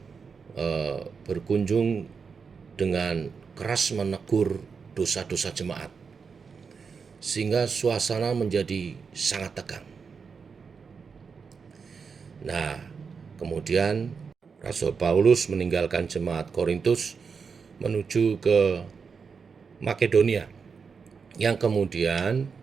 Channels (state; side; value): quieter; left; 5.6 dB